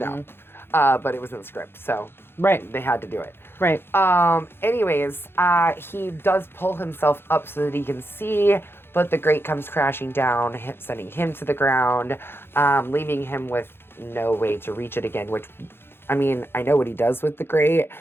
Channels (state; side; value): late; right; 0.11 ms